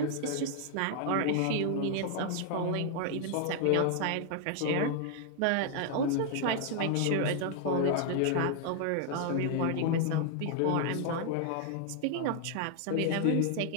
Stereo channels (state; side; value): different; both; correlation 0.00